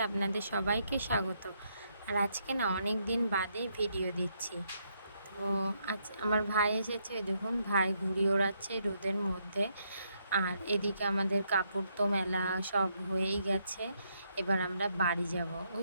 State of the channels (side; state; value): both; inverted; correlation -0.76